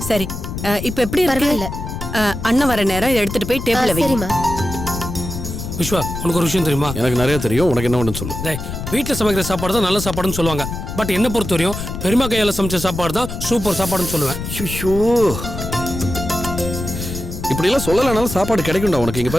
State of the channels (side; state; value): left; noise; rumble, 7 dB below the sound